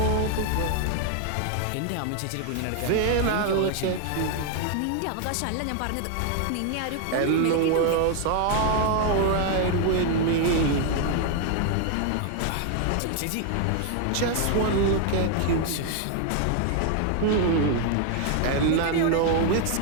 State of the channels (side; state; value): both; different; correlation 0.00